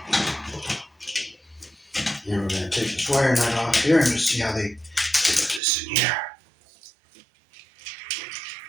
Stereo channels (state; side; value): drops out; left; at 5.6 s